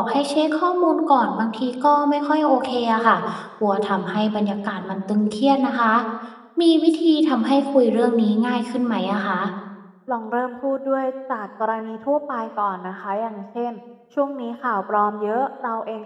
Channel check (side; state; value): both; identical; correlation 1.00